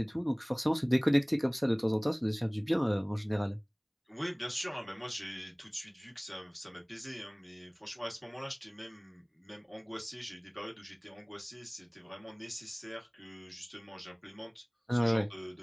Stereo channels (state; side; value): identical; both; correlation 1.00